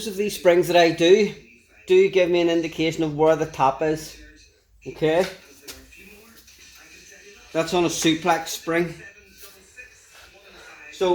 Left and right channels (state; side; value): identical; both; correlation 1.00